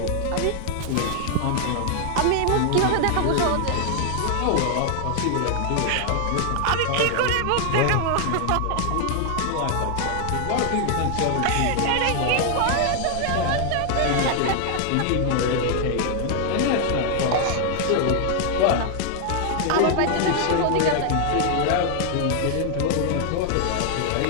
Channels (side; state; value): both; different; correlation 0.00